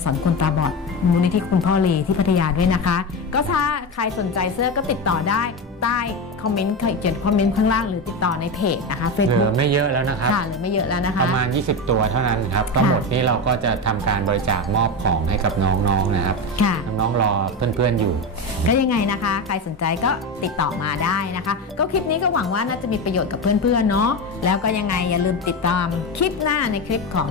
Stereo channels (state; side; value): normal; both; correlation 0.18